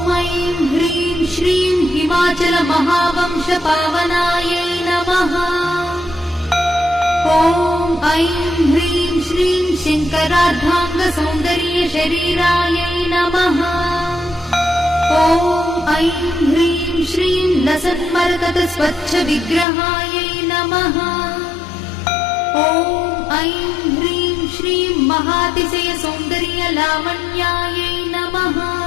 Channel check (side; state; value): right; drops out; at 19.7 s